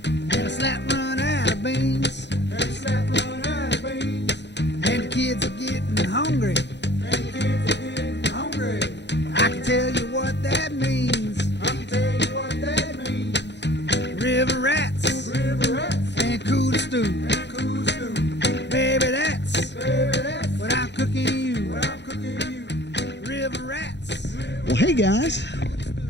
And a slap run out of beans. And a slap run out of beans. And the kids are getting hungry. And the kids are getting hungry. I can tell you what that means. I can tell you what that means. River rats. River rats. And cooler stew. And cool stew. Baby, that's What I'm cooking you. I'm cooking you. River rats. Well, hey guys,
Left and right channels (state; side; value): late; right; 0.51 ms